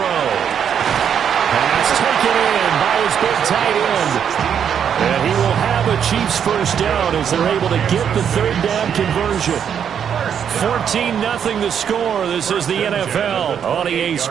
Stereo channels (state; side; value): quieter; left; 8.2 dB